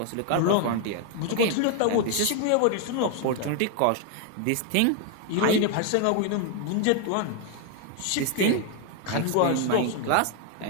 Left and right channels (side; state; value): both; different; correlation 0.01